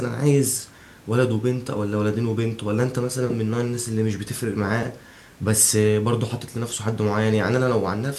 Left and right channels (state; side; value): identical; both; correlation 1.00